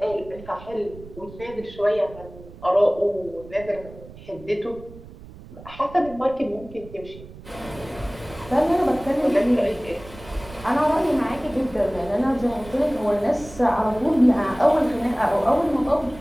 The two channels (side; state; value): right; noise; rumble, 18 dB below the sound